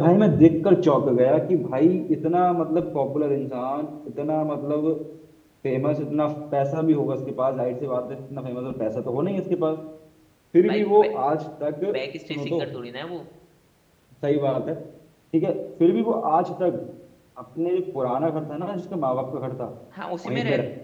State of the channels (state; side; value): identical; both; correlation 1.00